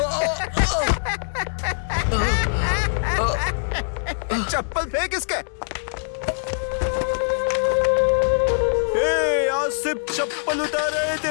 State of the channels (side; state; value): right; silent; digital silence